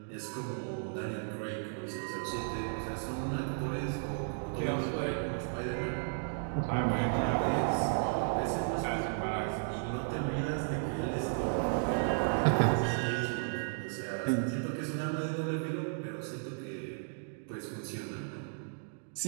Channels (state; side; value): silent; left; digital silence